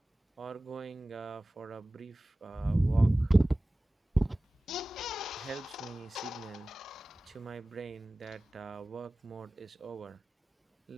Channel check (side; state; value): both; normal; correlation 0.97